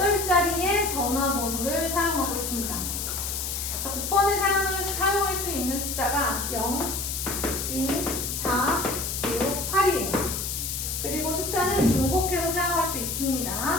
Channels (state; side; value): noise; left; hiss, 3 dB below the sound